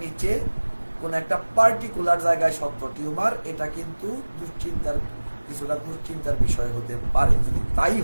নিচে কোন একটা পার্টিকুলার জায়গায় শক্ত টিউমার, এটা কিন্তু কিছুটা দুশ্চিন্তার বিষয় হতে পারে। যদি তাই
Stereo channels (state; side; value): inverted; both; correlation -1.00